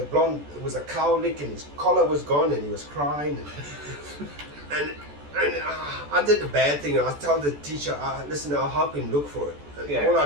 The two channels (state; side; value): late; left; 14 ms